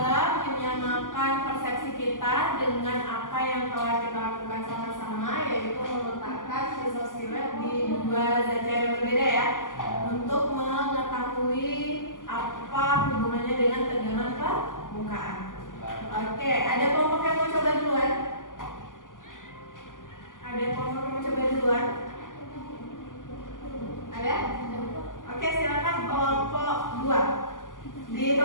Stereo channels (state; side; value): late; right; 0.88 ms